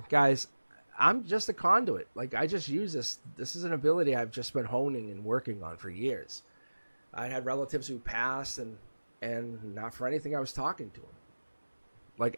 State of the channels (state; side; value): inverted; both; correlation -1.00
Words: guys, I'm just a conduit. Like, I just use this. This is an ability I've just been honing and working on for years. I had relatives who passed, and not for anything I was talking to them. Like,